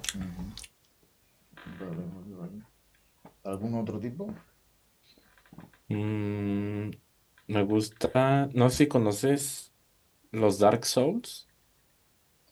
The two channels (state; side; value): identical; both; correlation 1.00